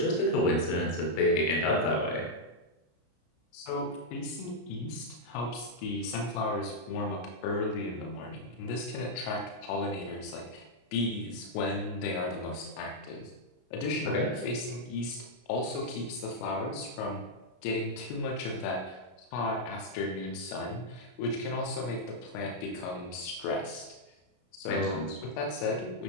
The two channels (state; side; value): late; right; 33 ms